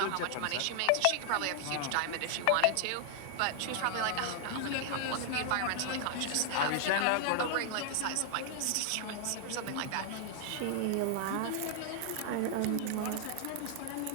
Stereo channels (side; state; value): both; different; correlation 0.00